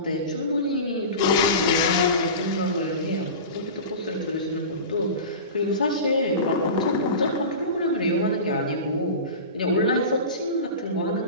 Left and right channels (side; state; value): both; inverted; correlation -0.30